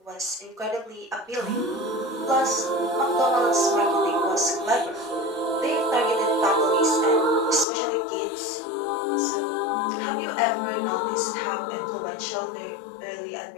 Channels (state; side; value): drops out; right; at 7.7 s